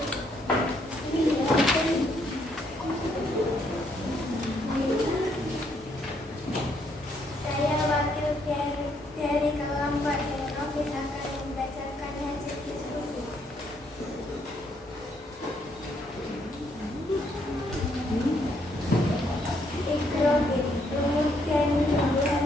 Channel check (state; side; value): normal; both; correlation 0.71